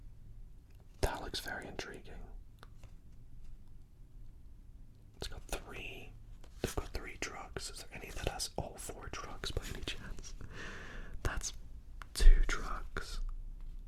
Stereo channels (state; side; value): identical; both; correlation 1.00